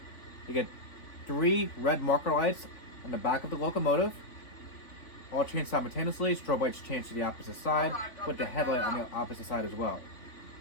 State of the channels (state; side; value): late; right; 3.5 ms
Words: You get 3 red marker lights on the back of the locomotive. All change simultaneously. Strobe lights change to the opposite side with the headlight on the opposite side as well.